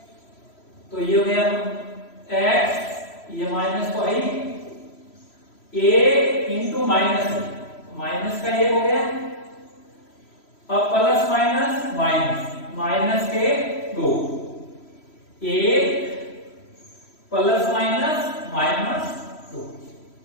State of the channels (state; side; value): late; right; 3.0 ms